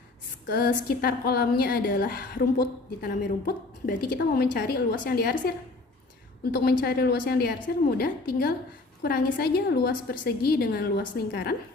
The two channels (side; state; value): right; quieter; 3.2 dB